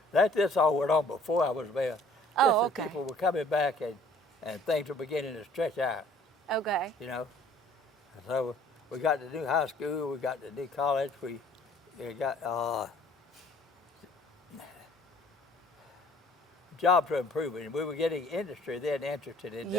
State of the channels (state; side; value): normal; both; correlation 0.56